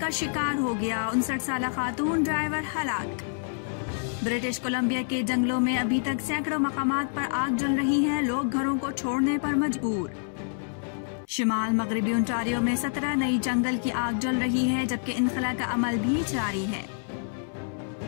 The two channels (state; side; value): silent; right; 60 dB below the other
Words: शिकार हो गया, 59 साल खातून ड्राइवर हलाक। ब्रिटिश कोलंबिया के जंगलों में अभी तक सैकड़ों मकामात पर आग जल रही है, लोग घरों को छोड़ने पर मजबूर। शिमाल मगरबी ओंटारियो में 17 नई जंगल की आग जल रही है, जबकि इनखला का अमल भी जारी है।